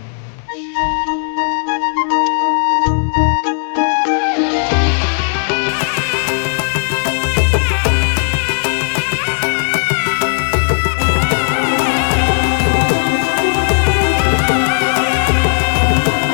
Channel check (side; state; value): right; silent; digital silence